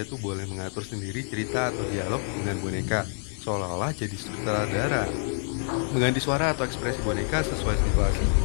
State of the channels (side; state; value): right; silent; 60 dB below the other